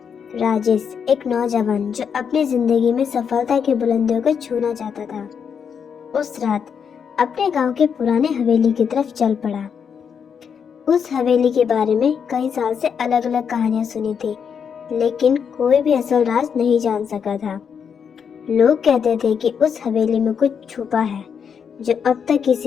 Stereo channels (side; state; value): right; quieter; 7.0 dB